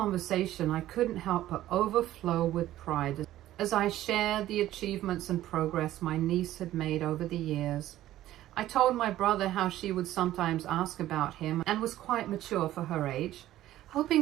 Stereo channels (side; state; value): left; quieter; 14.1 dB